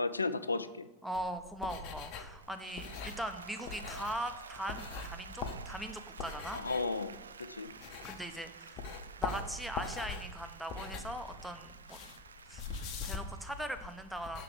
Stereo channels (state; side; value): normal; both; correlation 0.07